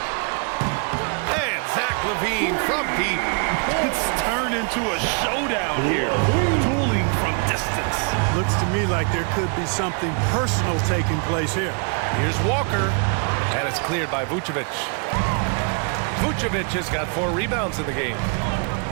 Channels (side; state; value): left; quieter; 38.8 dB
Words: Zach LaVine from deep. It's turned into a showdown here. Dueling from distance. Looks to me like there could be something personal taking place here. Here's Walker. And it's cleared by Vucevic. Vucevic has got 4 rebounds in the game.